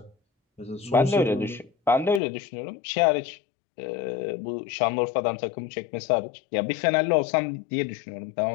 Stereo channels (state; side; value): drops out; right; at 2.2 s